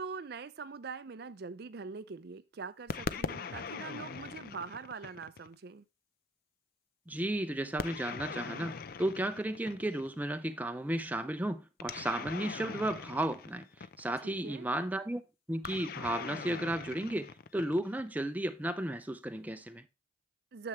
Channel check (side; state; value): both; normal; correlation 0.71